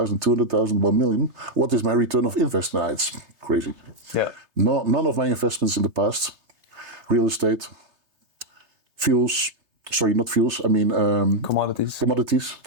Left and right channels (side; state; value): left; late; 3.3 ms